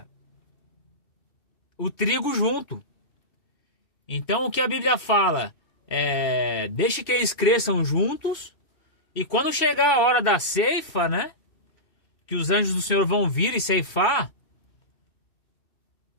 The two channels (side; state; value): right; late; 2.7 ms